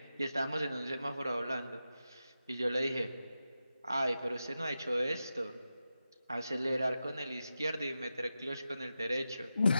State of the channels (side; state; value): both; inverted; correlation -0.91